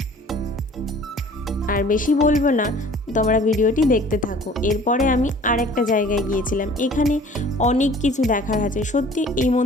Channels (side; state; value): both; normal; correlation 0.49